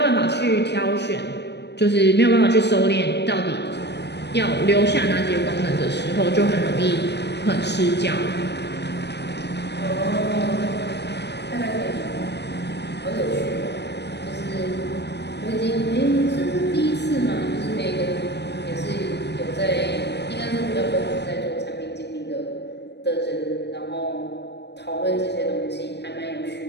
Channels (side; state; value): right; late; 0.50 ms